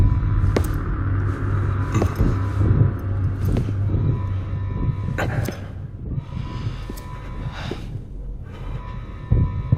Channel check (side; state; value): both; identical; correlation 1.00